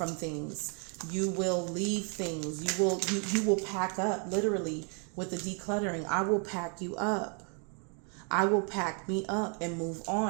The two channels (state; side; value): quieter; left; 39.7 dB